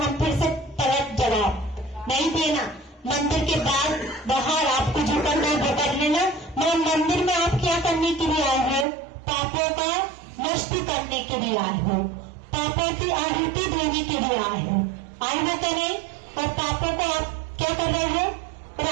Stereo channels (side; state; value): left; drops out; at 8.8 s